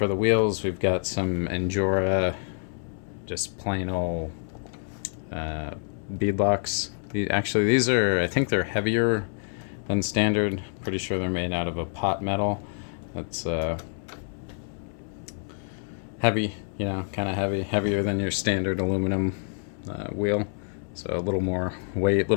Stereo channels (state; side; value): silent; right; 60 dB below the other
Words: the wheels, we've got some Endura, just plain old beadlocks. These are, I think they're heavier than standard. Pretty sure they're made out of a pot metal. That's heavy, kind of heavier than your standard aluminum wheel. So a little more weight, a